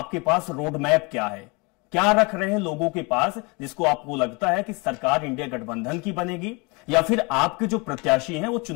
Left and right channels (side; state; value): right; quieter; 28.9 dB